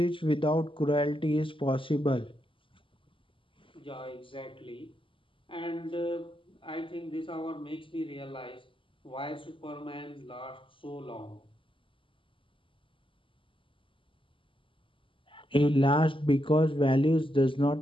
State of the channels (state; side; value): late; right; 0.25 ms